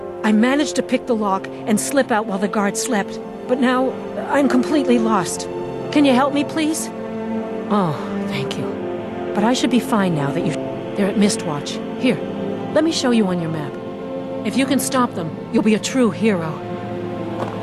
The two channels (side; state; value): both; identical; correlation 1.00